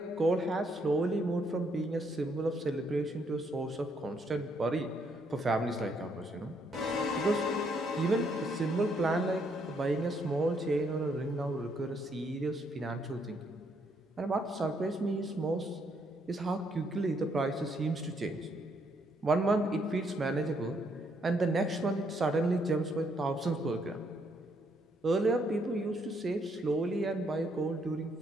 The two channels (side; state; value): both; normal; correlation 0.72